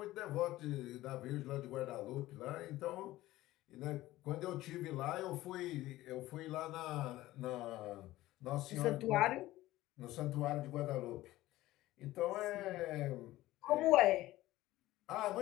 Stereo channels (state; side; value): quieter; right; 16.5 dB